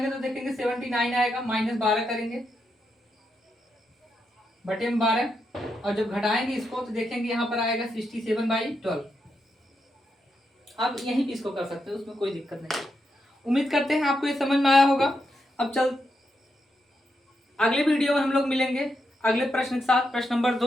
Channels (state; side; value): normal; both; correlation 0.83